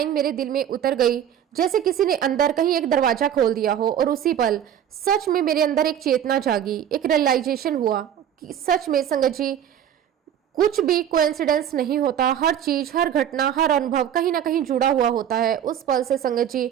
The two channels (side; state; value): left; quieter; 9.8 dB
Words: मेरे दिल में उतर गई, जैसे किसी ने अंदर कहीं एक दरवाजा खोल दिया हो। और उसी पल सच में मेरे अंदर एक चेतना जागी, एक रियलाइजेशन हुआ कि सच में संगत जी कुछ भी कोइंसिडेंस नहीं होता, हर चीज, हर घटना, हर अनुभव कहीं ना कहीं जुड़ा हुआ होता है। उस पल से संगत जी